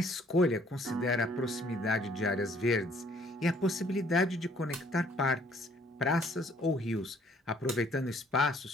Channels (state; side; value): normal; both; correlation 0.62